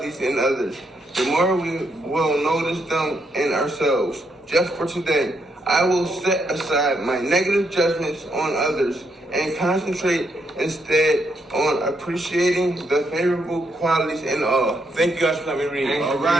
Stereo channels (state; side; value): normal; both; correlation 0.77